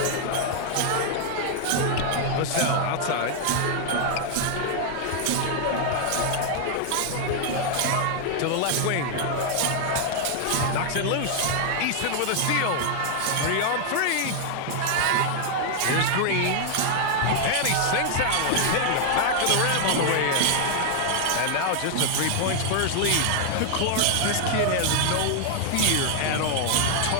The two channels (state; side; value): different; both; correlation 0.00